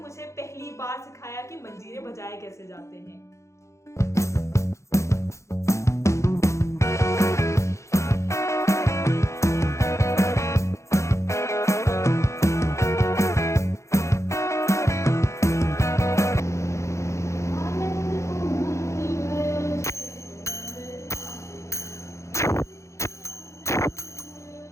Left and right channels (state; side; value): late; right; 0.14 ms